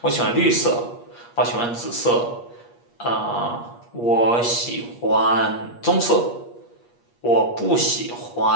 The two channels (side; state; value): right; late; 8.4 ms